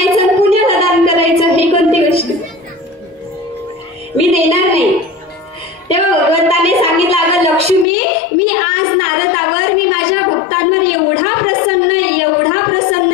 पुण्याला दान करायचं, हे कोणती गोष्ट? मी देणार नाही. तेव्हा भगवंताने सांगितलं, अगं लक्ष्मी, मी आज नारदावर, मी माझ्या भक्तांवर एवढा प्रसन्न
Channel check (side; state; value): right; drops out; at 7.9 s